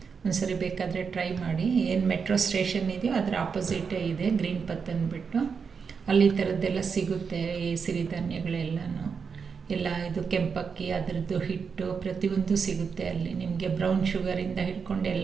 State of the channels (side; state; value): left; quieter; 5.9 dB